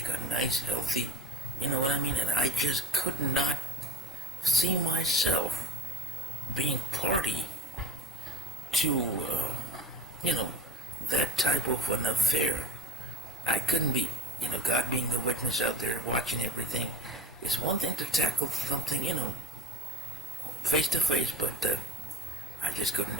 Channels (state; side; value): normal; both; correlation 0.32